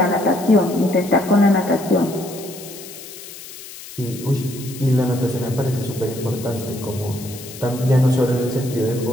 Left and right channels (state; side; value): noise; left; hiss, 15 dB below the sound